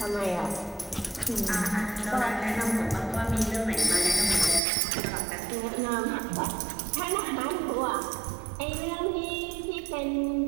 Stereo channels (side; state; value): left; drops out; at 4.6 s